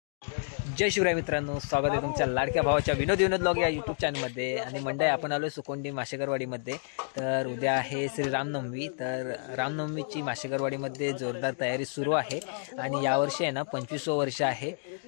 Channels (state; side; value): silent; right; digital silence